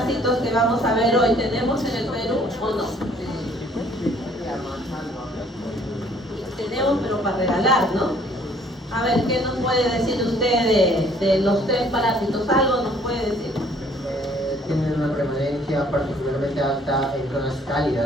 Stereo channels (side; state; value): both; normal; correlation 0.59